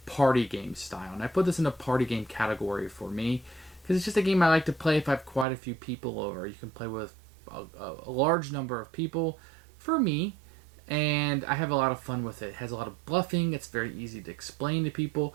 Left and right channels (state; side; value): drops out; left; at 5.5 s